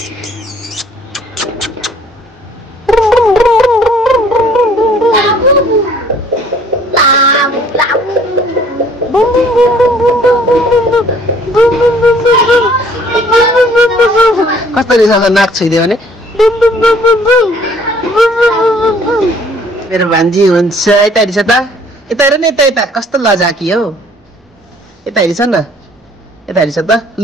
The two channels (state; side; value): normal; both; correlation 0.57